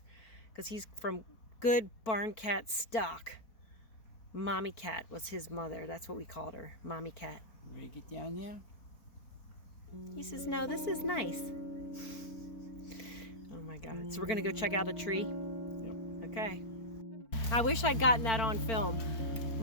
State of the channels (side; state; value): right; late; 4.4 ms